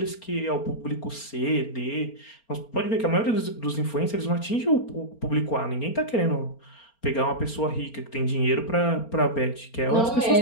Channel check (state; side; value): late; right; 4.3 ms